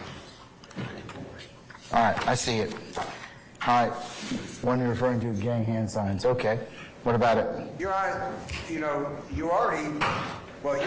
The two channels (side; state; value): both; identical; correlation 1.00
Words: All right, I see it. All right, one you're referring to, gang hand signs. Okay, what about it? Your Honor, you already